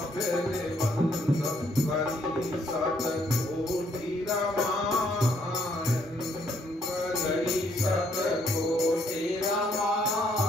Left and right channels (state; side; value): normal; both; correlation 0.69